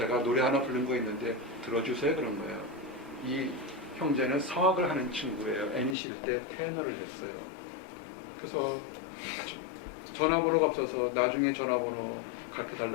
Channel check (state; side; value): drops out; right; at 6.0 s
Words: 노래 하나 부른 거 있는데 들어주세요. 그런 거예요. 이 형제는 성악을 하는 친구예요. NEC 때 테너를 했어요. 그래서 전화번호가 없어서 나중에 전화번호 갖게